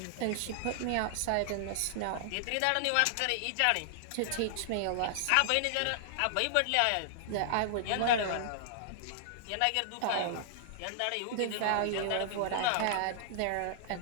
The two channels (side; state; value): both; different; correlation -0.01